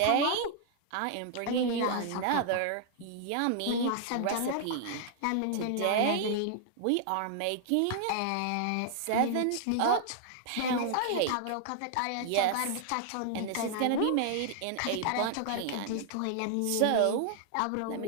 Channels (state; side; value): different; both; correlation 0.00